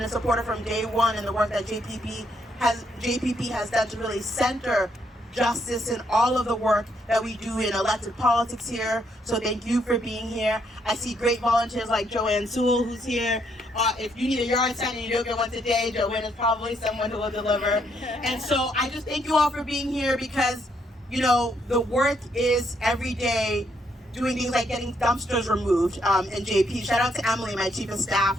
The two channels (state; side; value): normal; both; correlation 0.73